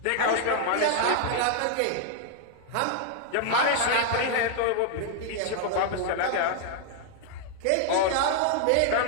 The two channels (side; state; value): both; different; correlation 0.00